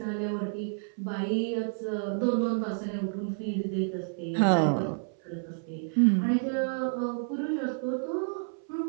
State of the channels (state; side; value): silent; left; 58 dB below the other